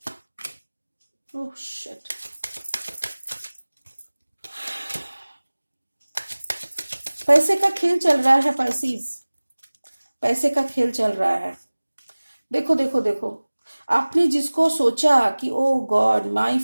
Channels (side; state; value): both; inverted; correlation -1.00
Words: Oh shit. पैसे का खेल चल रहा है पाइसीज, पैसे का खेल चल रहा है। देखो देखो देखो, आपने जिसको सोचा कि oh god my